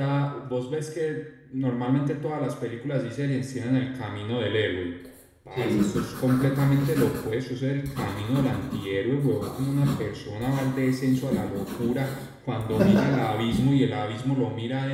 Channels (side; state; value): both; identical; correlation 1.00